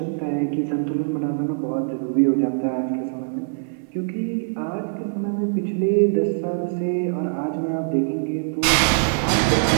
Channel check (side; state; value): left; silent; 61 dB below the other